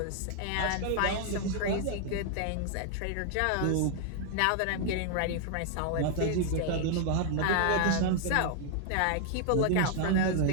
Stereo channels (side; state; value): both; different; correlation 0.00